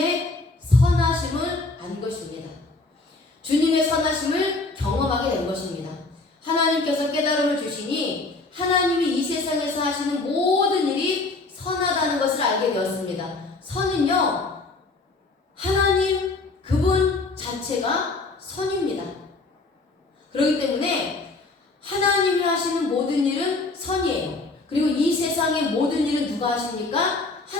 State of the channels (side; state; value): right; quieter; 3.5 dB